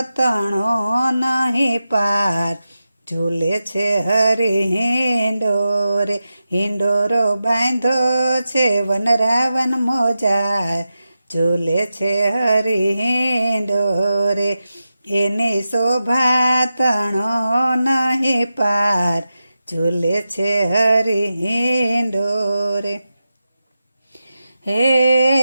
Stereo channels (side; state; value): both; inverted; correlation -0.91